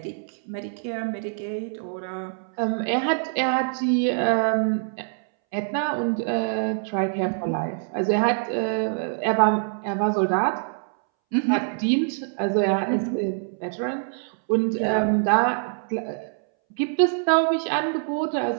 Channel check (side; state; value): left; silent; 62 dB below the other